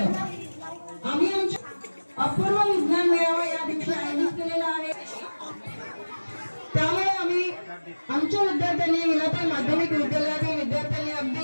आम्ही आमच्या अपूर्व विज्ञान मेळावा या दिवशी आयोजित केलेला आहे। त्यामुळे आम्ही आमच्या विद्यार्थ्यांनी विलाताई माध्यमिक विद्यालयातील विद्यार्थ्यांनी अगदी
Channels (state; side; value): inverted; both; correlation -1.00